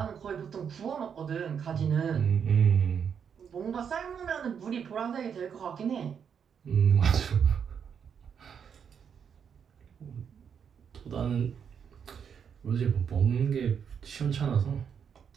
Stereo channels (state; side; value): quieter; left; 7.4 dB